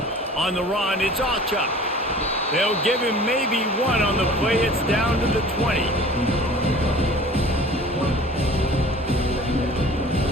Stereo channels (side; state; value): both; normal; correlation 0.45